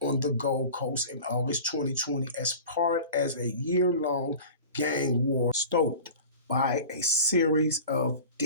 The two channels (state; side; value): inverted; both; correlation -0.38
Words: on the Gold Coast in August 2020 as a year-long gang war stoked by a series of